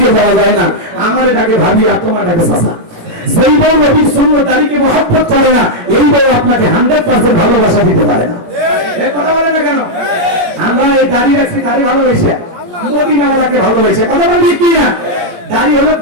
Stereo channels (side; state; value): left; late; 17 ms